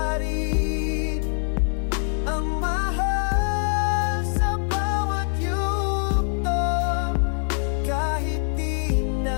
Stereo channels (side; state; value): right; silent; 63 dB below the other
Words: rin ang mahal sa bawat yugto. Kahit di